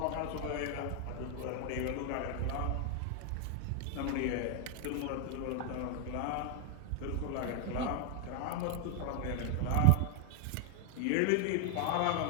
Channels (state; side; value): different; both; correlation 0.01